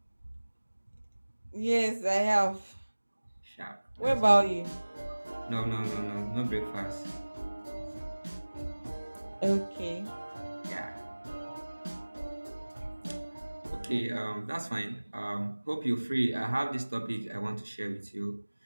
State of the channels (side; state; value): both; inverted; correlation -1.00